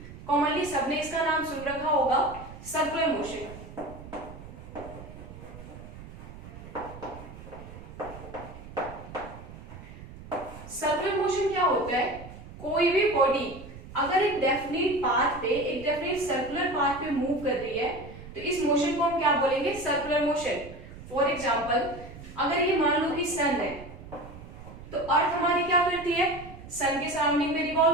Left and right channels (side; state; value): right; noise; rumble, 15 dB below the sound